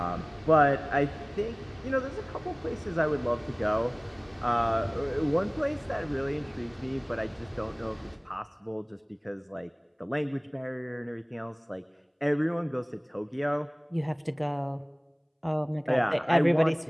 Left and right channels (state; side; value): identical; both; correlation 1.00